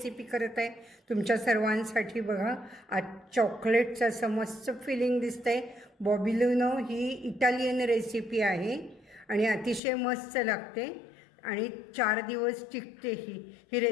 करत आहे तुमच्या सर्वांसाठी। बघा, आज चॉकलेटचं असं मस्त फिलिंग दिसतंय। बॉबिलिनो ही इटालियन रेसिपी आहे आणि अतिशय मस्त लागते आणि 4 दिवस टिकते। ही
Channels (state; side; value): drops out; right; at 9.8 s